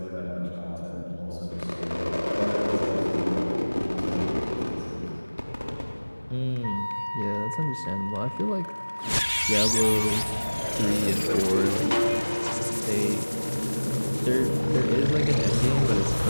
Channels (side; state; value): both; inverted; correlation -1.00